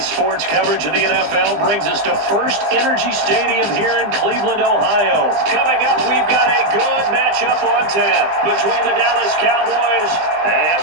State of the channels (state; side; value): late; left; 20 ms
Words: coverage of the NFL brings us to First Energy Stadium here in Cleveland, Ohio. Coming up, we've got a good matchup on tap between the Dallas Cowboys